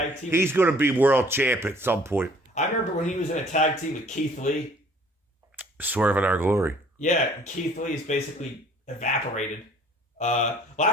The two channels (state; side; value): normal; both; correlation 0.55